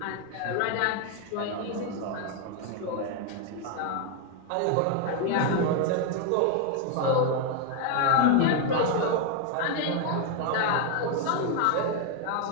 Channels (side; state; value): both; different; correlation 0.01